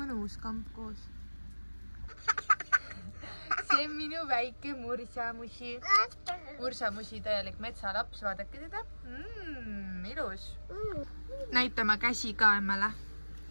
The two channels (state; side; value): inverted; both; correlation -1.00